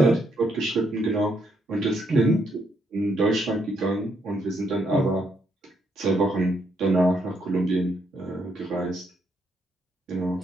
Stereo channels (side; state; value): both; normal; correlation 0.75